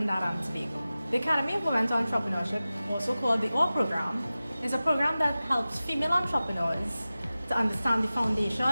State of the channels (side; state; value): both; inverted; correlation -0.96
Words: and Tobago. The Academy of Women's Entrepreneurship, also called the OR program, is a program that helps female entrepreneurs to understand the